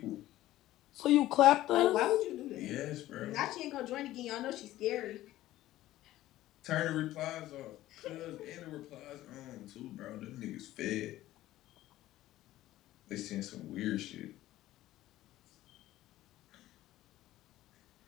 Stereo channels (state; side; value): quieter; right; 15.1 dB